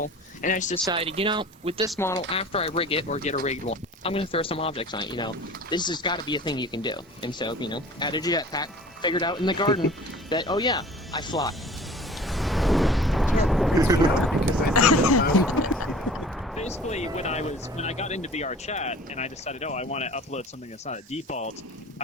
and I just decided, with this model, after I rig it or get a rigged one, I'm going to throw some objects on it. This has got to be a thing you can do. And so, added a jetpack, figured out in the garden that, oh yeah, I fly. Basically, when I got into VR chat and I decided, I want to upload something that's not a default,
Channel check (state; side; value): normal; both; correlation 0.44